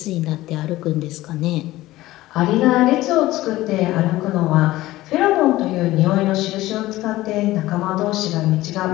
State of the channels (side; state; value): right; quieter; 17.0 dB